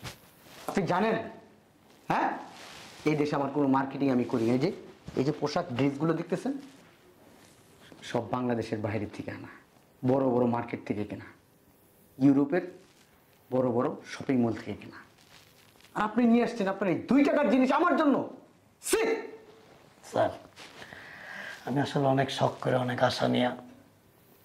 আপনি জানেন, হ্যাঁ, এই দেশে আমার কোনো মার্কেটিং আমি করি না। এই যে পোশাক ড্রেসগুলো দেখতেছেন, সব বাংলাদেশের বাইরের থেকে আনা, বড় বড় মার্কেট থেকে কেনা, ইউরোপের বড় বড় শপিং মল থেকে কেনা। আর আপনি নিয়ে আসছেন আপনার এই 2 টাকার জিনিস আমার জন্য। স্যার আমি আসলে অনেক শখ করে, অনেক আশা নিয়ে,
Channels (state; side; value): identical; both; correlation 1.00